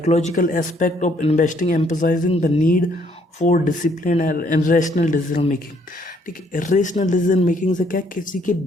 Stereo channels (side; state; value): both; normal; correlation 0.67